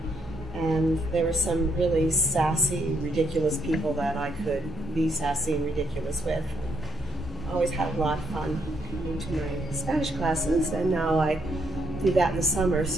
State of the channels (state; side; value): normal; both; correlation 0.73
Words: and there were some really sassy, ridiculous people that I could be sassy and ridiculous with. I always had a lot of fun coming to my Spanish classes, and now I do that in the summer,